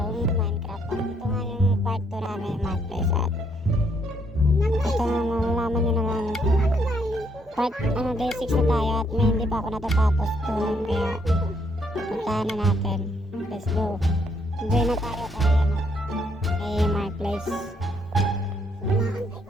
Minecraft. At ito nga yung part 2 namin Marketplace at ito nga malalaman nyo naman part day 6 na tayo at may hindi pa ako natatapos doon kaya puntahan na natin. Let's go. Enjoy na tayo kay Marketplace.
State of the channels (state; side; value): normal; both; correlation 0.71